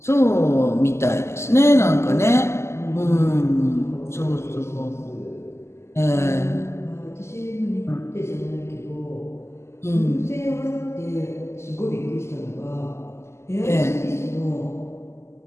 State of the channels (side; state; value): right; late; 0.13 ms